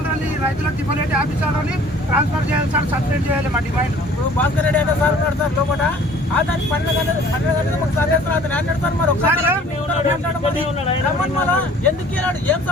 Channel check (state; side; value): normal; both; correlation 0.51